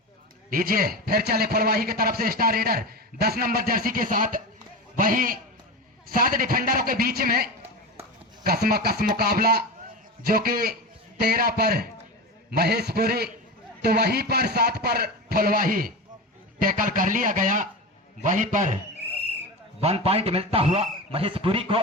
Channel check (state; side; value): normal; both; correlation 0.23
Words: लीजिए फिर चले फुलवाही की तरफ से स्टार रेडर 10 नंबर जर्सी के साथ, वहीं 7 डिफेंडरों के बीच में कसम मुकाबला, जो कि 13 पर महेशपुरी तो वहीं पर 7 पर फुलवाही टैकल कर लिया गया। वहीं पर 1 पॉइंट मिलता हुआ महेशपुरी को।